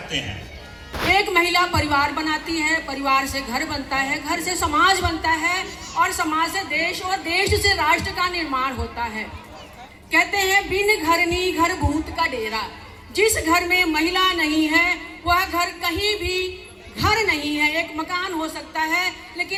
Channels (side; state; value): both; identical; correlation 1.00